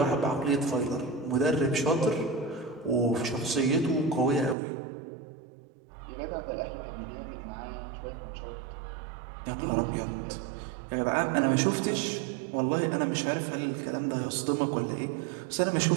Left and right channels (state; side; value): drops out; left; at 4.5 s